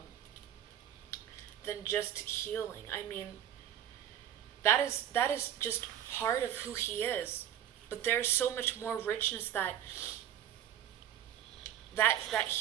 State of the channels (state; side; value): quieter; left; 10.9 dB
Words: healing. I mean, that is just part of who he is. But there's so much more richness that